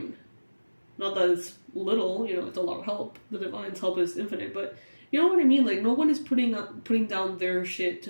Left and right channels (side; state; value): both; inverted; correlation -1.00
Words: Not that it's little, it's a lot of help. The divine's help is infinite, but you know what I mean? Like, no one is putting down their shit